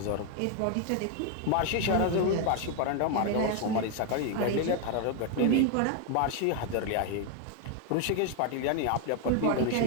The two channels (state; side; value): different; both; correlation 0.00